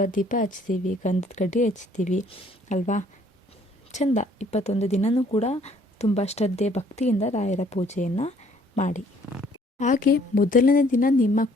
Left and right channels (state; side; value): normal; both; correlation 0.61